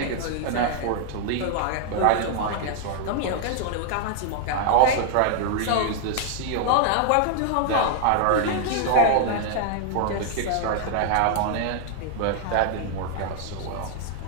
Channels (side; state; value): both; different; correlation 0.00